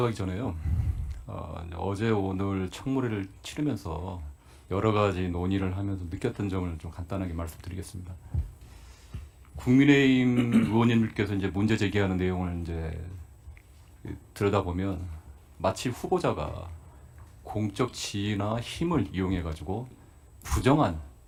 전에요. 어제 오늘 청문회를 치르면서 여러 가지 논의를 하면서 느꼈던 점을 좀 간단하게 말씀드리겠습니다. 국민의힘 의원님들께서 이제 문제 제기하는 내용을 이제 들여다보면 마치 후보자가 공적 지위나 힘을 이용해 가지고 부정한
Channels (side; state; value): both; identical; correlation 1.00